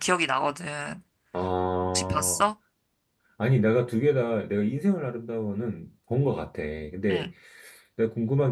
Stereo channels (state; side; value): identical; both; correlation 1.00